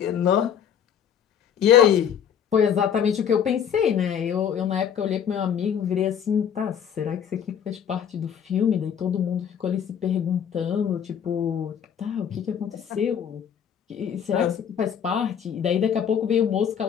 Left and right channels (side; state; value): right; quieter; 8.4 dB